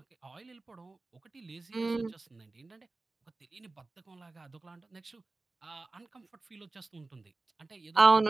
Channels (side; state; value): left; quieter; 3.3 dB